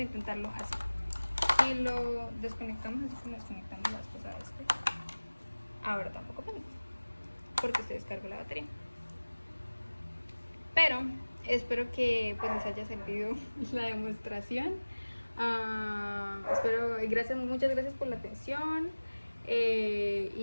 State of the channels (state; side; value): inverted; both; correlation -1.00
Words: intentarlo así. Si lo desconectamos así como desconectamos la vez pasada ahora tampoco prende, porque se descargó la batería. Pero espero que pues les haya servido la demostración. Muchas gracias por la atención.